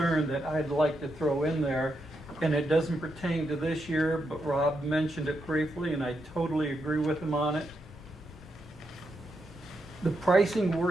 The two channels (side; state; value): both; normal; correlation 0.83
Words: that I'd like to throw in there, and it doesn't pertain to this year, but Rob mentioned it briefly, and I totally agree with him on it. The pricing